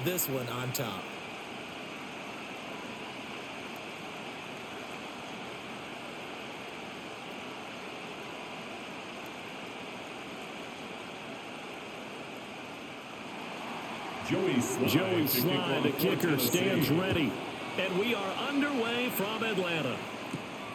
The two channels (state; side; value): identical; both; correlation 1.00